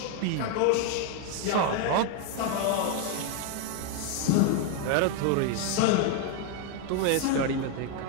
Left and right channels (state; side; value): different; both; correlation 0.01